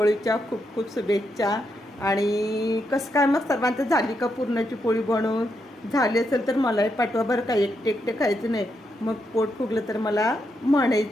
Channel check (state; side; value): normal; both; correlation 0.81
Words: खूप खूप शुभेच्छा. आणि कसं काय मग सर्वांचं झाली का पुरणाची पोळी बनवून? झाली असेल तर मलाही पाठवा बरं का. एकटे एकटे खायचं नाही, मग पोट फुगलं तर मला